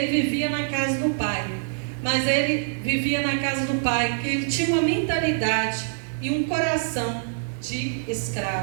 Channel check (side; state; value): left; silent; digital silence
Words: vivia na casa do pai. Mas ele vivia na casa do pai, que ele tinha uma mentalidade e um coração de